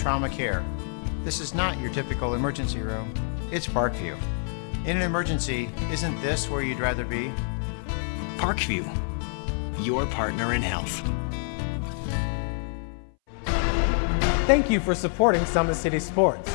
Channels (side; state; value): right; silent; 60 dB below the other